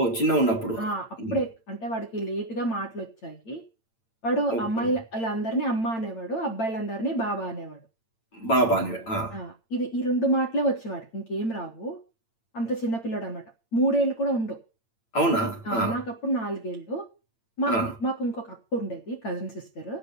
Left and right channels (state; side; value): late; right; 8.8 ms